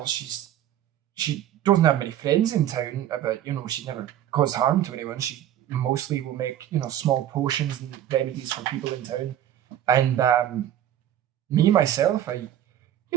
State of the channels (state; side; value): quieter; left; 11.5 dB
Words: She doesn't have many friends in town, but she never caused harm to anyone. She mostly will make small potions and remedies for people in town. And me myself,